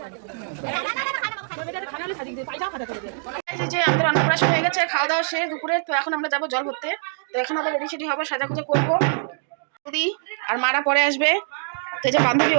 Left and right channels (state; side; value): silent; left; digital silence